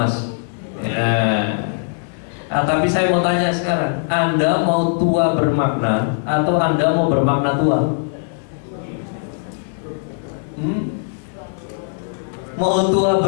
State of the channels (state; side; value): silent; right; 66 dB below the other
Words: Ya. Nah, tapi saya mau tanya sekarang, Anda mau tua bermakna atau Anda mau bermakna tua? Mau tua